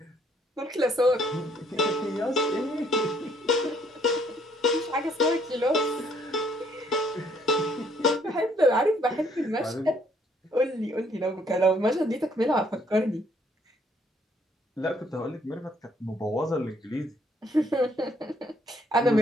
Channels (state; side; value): normal; both; correlation 0.66